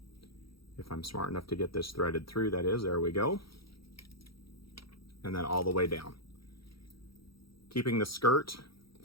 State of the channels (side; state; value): right; late; 0.75 ms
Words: If I'm smart enough to get this threaded through, that is, there we go. And then all the way down. Keeping the skirt